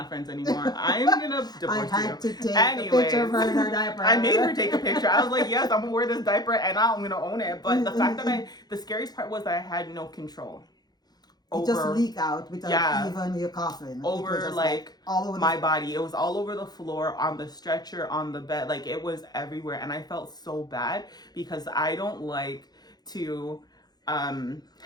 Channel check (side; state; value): right; late; 0.19 ms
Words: friends anymore. I'm gonna divorce you. I had to take a picture of her in her diaper. I made her take a picture. I was like, yes, I'm gonna wear this diaper and I'm gonna own it. But the fact that the scariest part was that I had no control. It just leaked out without even your coughing. Over like all over my body. It was all over the floor, on the stretcher, on the bed. Like it was everywhere. And I felt so bad because I don't like to